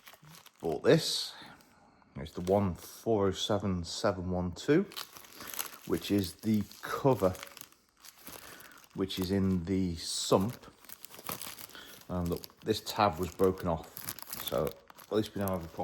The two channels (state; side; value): identical; both; correlation 1.00